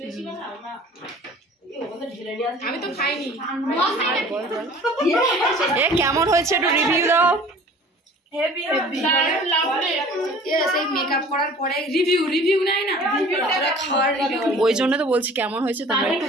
আমি তো খাইনি। এ কেমন হয়েছে একটু রিভিউ দাও। হেভি হেভি সেই মেকআপ করার পরে রিভিউ নাই না, রিভিউটা খাওয়ার রিভিউ। ওই জন্য তো বলছি কেমন হয়েছে তোমরা একটু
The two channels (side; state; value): both; normal; correlation 0.47